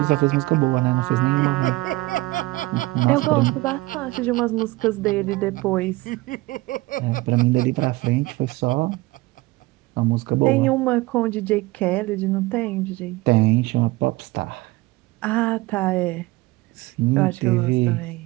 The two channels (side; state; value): left; quieter; 20.6 dB